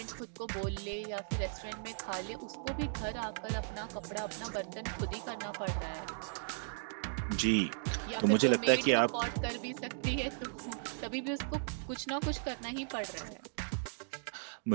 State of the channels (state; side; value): silent; left; digital silence